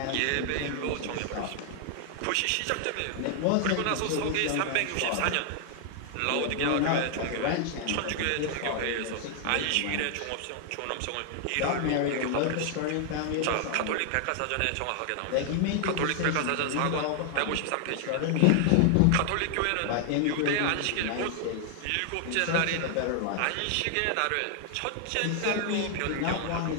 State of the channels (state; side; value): different; both; correlation 0.00